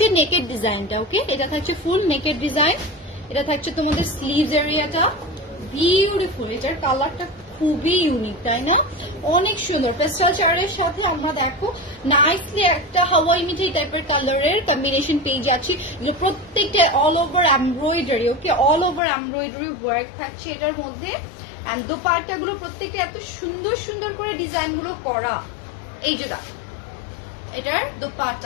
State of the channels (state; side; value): drops out; right; at 19.0 s